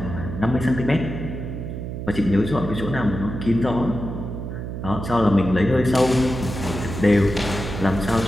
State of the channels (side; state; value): right; noise; hum, 6 dB below the sound